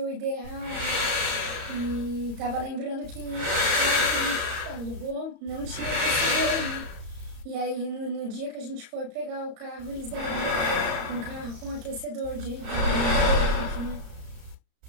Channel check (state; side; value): late; left; 33 ms